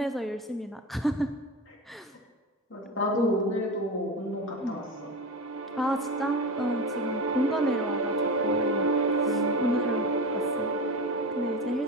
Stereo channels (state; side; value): normal; both; correlation 0.24